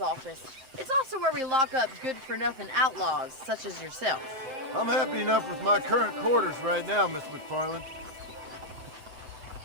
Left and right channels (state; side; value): late; left; 7.5 ms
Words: It's also where we lock up good-for-nothing outlaws, such as yourself. I'm happy enough with my current quarters right now, Miss McFarland.